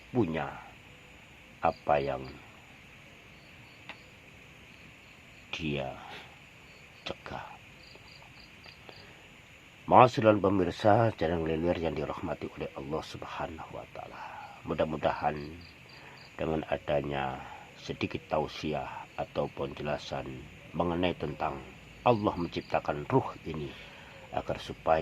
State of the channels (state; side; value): identical; both; correlation 1.00